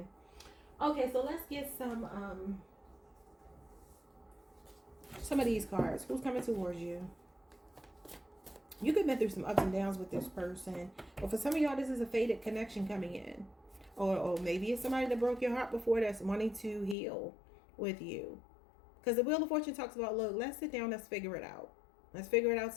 Okay, so let's get some of these cards. Who's coming towards you? You could have been through some ups and downs with this person. But for some of y'all, this is a faded connection coming in. Or maybe it's somebody that broke your heart before that's wanting to heal with you. Because the Wheel of Fortune talks about, look, let's sit down, let's figure it out. Let's figure it out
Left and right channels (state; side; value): drops out; right; at 16.9 s